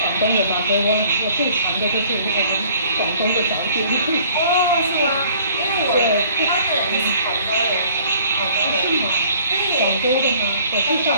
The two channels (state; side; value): inverted; both; correlation -0.55